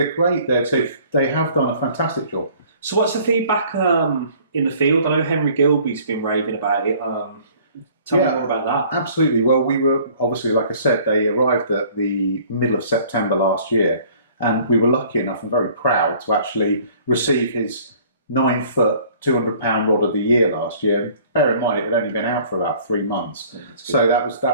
great. They have done a fantastic job. So what's the feedback in the field? I know Henry Gilby's been raving about it. Tell me more about that. Absolutely. Well, we were obviously, like I said, they arrived at the middle of September last year, and we were lucky enough and very proud to actually receive his 9-foot, 200-pound rod of the year last year. Bear in mind, it had only been out for about 3 months, so that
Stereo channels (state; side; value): inverted; both; correlation -0.54